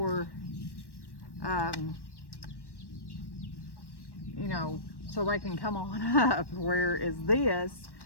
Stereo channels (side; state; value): right; late; 1.1 ms